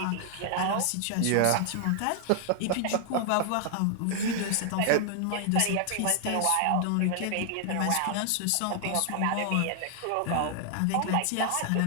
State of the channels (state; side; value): different; both; correlation 0.00